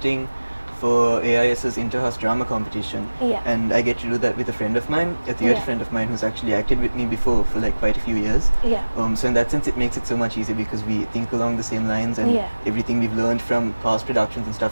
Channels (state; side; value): inverted; both; correlation -1.00